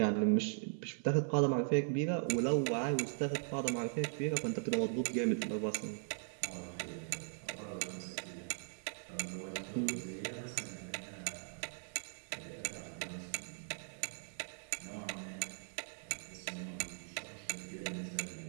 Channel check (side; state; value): left; silent; 51 dB below the other